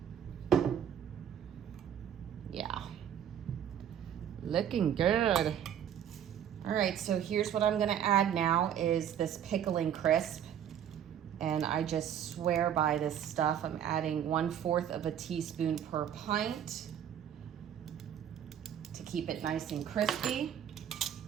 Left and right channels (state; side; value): quieter; left; 9.5 dB